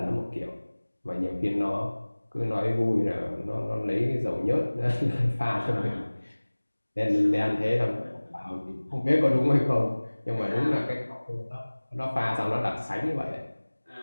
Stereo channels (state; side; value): inverted; both; correlation -1.00